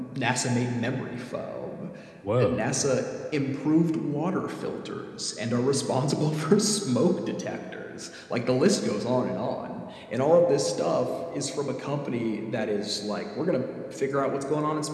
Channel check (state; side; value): identical; both; correlation 1.00